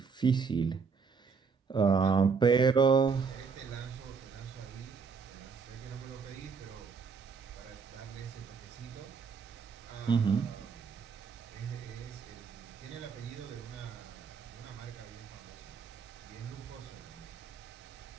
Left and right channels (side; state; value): left; quieter; 5.4 dB